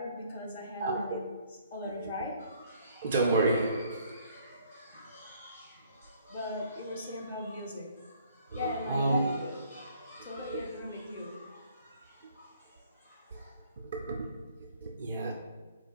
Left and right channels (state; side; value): inverted; both; correlation -0.61